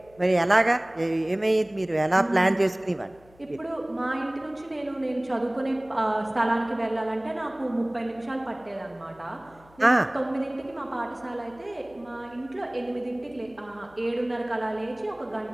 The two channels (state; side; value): noise; left; hum, 27 dB below the sound